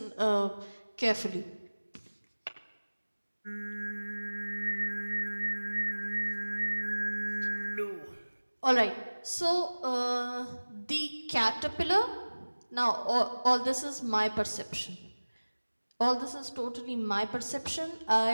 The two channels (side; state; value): both; inverted; correlation -1.00